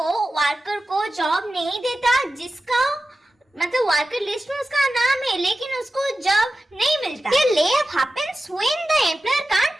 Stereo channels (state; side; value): normal; both; correlation 0.94